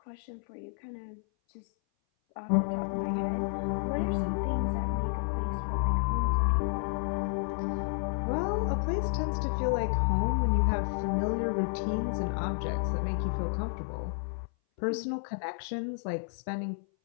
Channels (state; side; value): silent; right; 57 dB below the other